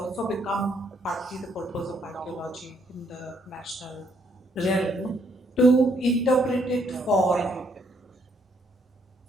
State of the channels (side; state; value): both; normal; correlation 0.70